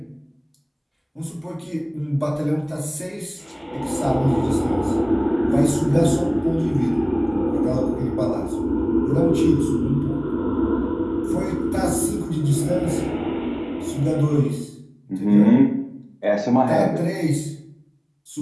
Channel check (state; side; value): identical; both; correlation 1.00